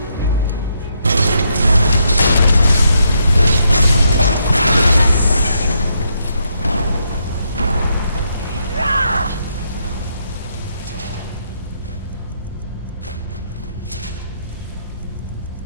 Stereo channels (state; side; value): inverted; both; correlation -0.77